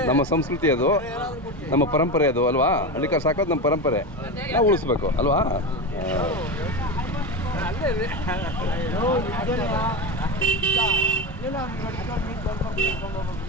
ನಮ್ಮ ಸಂಸ್ಕೃತಿ ಅದು, ನಮ್ಮ ಪರಂಪರೆ ಅದು ಅಲ್ವಾ? ಹಳ್ಳಿಕಾರ ಸಾಕೋದು ನಮ್ಮ ಪರಂಪರೆ, ನಾವು ಉಳಿಸ್ಬೇಕು ಅಲ್ವಾ?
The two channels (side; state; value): both; normal; correlation 0.20